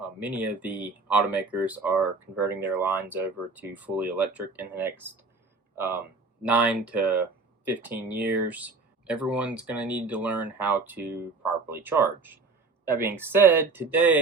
many of the automakers are converting their lines over to fully electric in the next 9 to 15 years. Everyone's going to need to learn how to properly charge. That being said,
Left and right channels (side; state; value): left; quieter; 3.9 dB